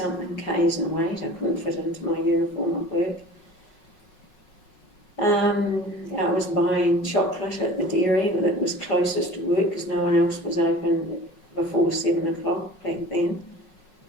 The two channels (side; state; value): right; late; 5.4 ms